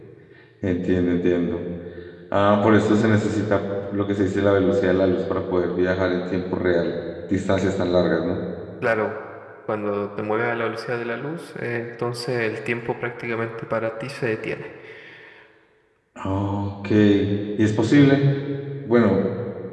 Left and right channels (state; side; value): identical; both; correlation 1.00